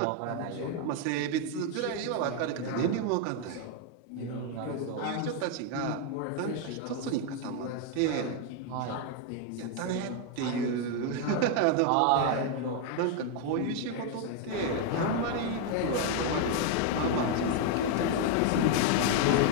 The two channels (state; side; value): different; both; correlation 0.01